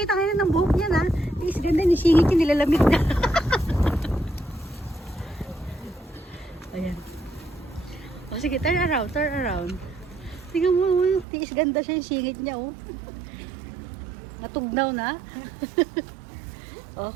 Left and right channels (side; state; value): left; drops out; at 11.2 s